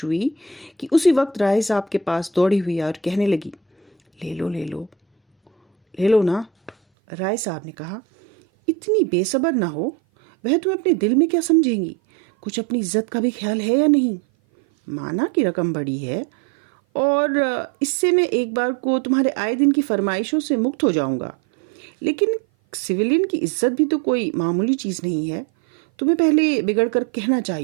हुई कि उसी वक्त राय साहब के पास दौड़ी हुई और कहने लगी, ले लो ले लो ले लो ना। राय साहब ने कहा, इतनी बेसब्र ना हो। वह तुम्हें अपने दिल में क्या समझेंगी? कुछ अपनी इज्जत का भी ख्याल है या नहीं? माना कि रकम बड़ी है और इससे मैं एक बार को तुम्हारे आए दिन की फरमाइशों से मुक्त हो जाऊंगा। लेकिन सिविलियन की इज्जत भी तो कोई मामूली चीज़ नहीं है। तुम्हें पहले बिगड़ कर कहना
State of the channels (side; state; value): left; drops out; at 6.8 s